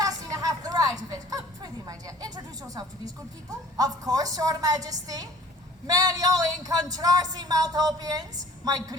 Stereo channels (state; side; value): normal; both; correlation 0.49